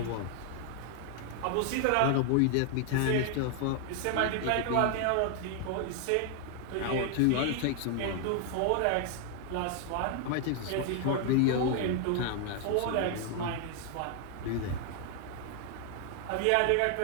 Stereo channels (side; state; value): both; different; correlation 0.00